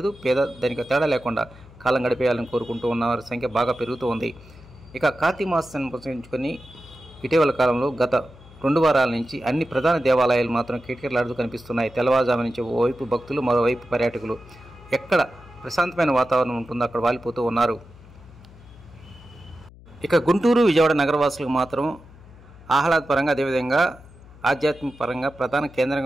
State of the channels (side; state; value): left; noise; hum, 21 dB below the sound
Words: పేద ధనిక తేడా లేకుండా కాలం గడిపేయాలని కోరుకుంటూ ఉన్న వారి సంఖ్య బాగా పెరుగుతూ ఉంది. ఇక కార్తీక మాసాన్ని పురస్కరించుకొని ఇటీవల కాలంలో గత 2 వారాల నుంచి అన్ని ప్రధాన దేవాలయాలు మాత్రం కిటకిటలాడుతూ కనిపిస్తున్నాయి. తెల్లవారుజాము నుంచి ఓవైపు భక్తులు, మరోవైపు పర్యాటకులు. ఎక్కడ ప్రశాంతమైన వాతావరణం ఉంటుందో అక్కడ వాలిపోతూ ఉన్నారు. ఇక గుంటూరు, విజయవాడ నగరవాసులకు మాత్రం ఆహ్లాదపరంగా, అదేవిధంగా ఆధ్యాత్మిక పరంగా ప్రధాన